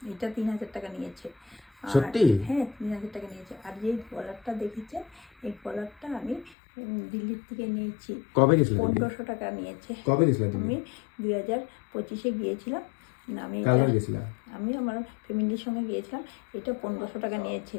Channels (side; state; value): right; drops out; at 6.6 s